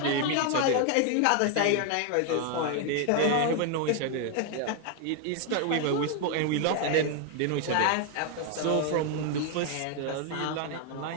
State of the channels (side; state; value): both; different; correlation 0.01